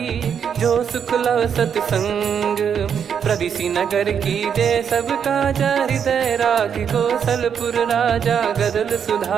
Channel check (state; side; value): quieter; left; 7.7 dB